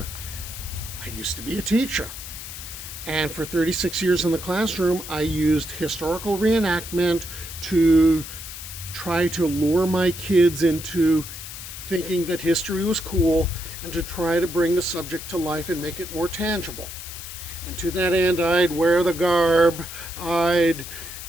I used to be a teacher, and for 36 years in the classroom, I used historical reenactment to try to lure my kids into thinking that history was cool and to try to bring the subject to life and make it more tangible. And to that end, I'd wear the garb, I'd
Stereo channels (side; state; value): left; noise; hiss, 11 dB below the sound